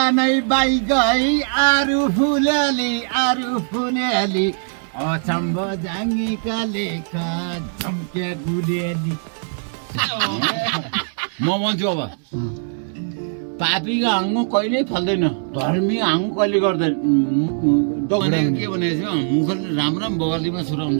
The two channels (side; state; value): left; silent; digital silence